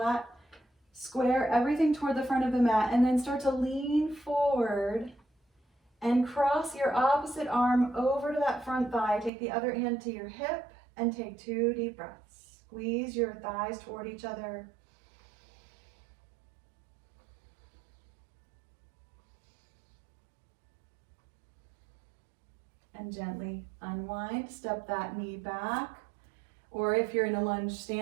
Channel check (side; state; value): left; drops out; at 9.3 s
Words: Square everything toward the front of the mat and then start to lean forward and cross your opposite arm over to that front thigh. Take the other hand to your hip and take 2 deep breaths. Squeeze your thighs toward each other. And gently unwind, step that knee back. Or if you're in a lunge